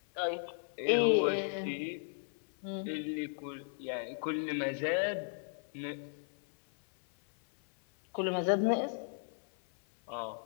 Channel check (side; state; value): right; silent; 54 dB below the other